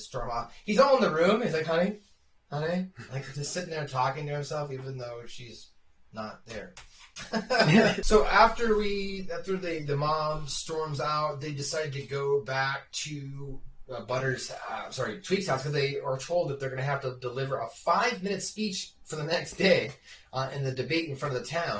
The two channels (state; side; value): identical; both; correlation 1.00